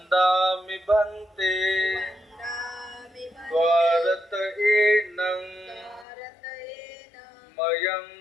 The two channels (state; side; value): drops out; right; at 6.1 s